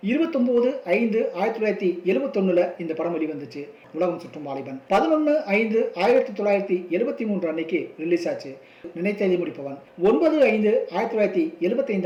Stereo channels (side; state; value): both; identical; correlation 1.00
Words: 29/5/1971 இந்த படம் வெளிவந்துச்சு. உலகம் சுற்றும் வாலிபன் 11/5/1973 அன்னைக்கு ரிலீஸ் ஆச்சு. நினைத்ததை முடிப்பவன்